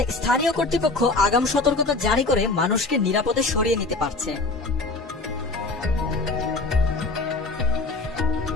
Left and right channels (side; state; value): right; quieter; 3.6 dB